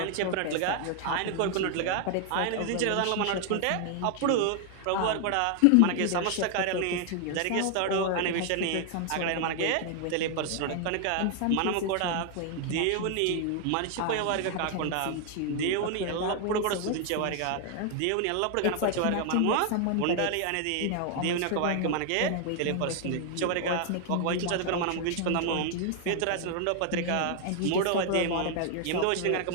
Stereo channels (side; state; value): both; different; correlation 0.00